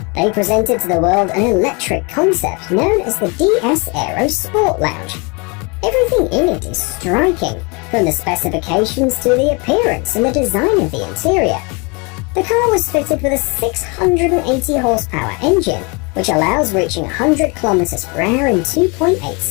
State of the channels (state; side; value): quieter; right; 30.3 dB